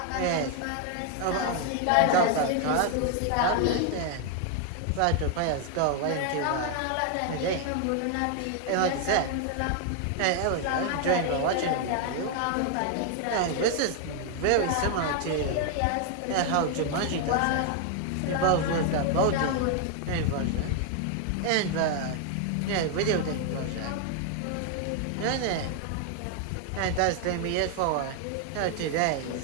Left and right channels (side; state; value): both; different; correlation 0.00